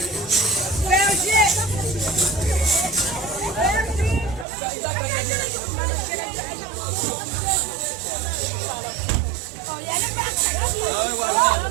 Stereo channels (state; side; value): drops out; left; at 4.5 s